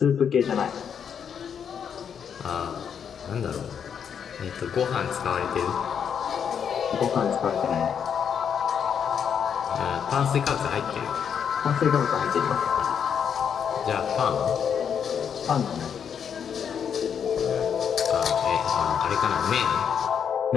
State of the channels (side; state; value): right; quieter; 7.7 dB